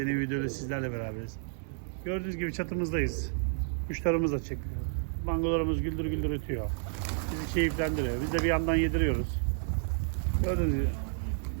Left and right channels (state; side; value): silent; left; digital silence